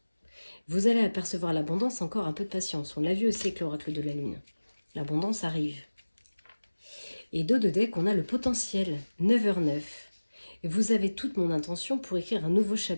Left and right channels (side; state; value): both; inverted; correlation -1.00